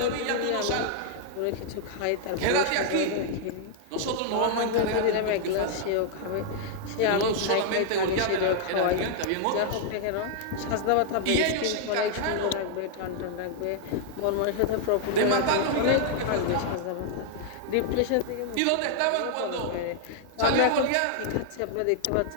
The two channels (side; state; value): both; different; correlation -0.01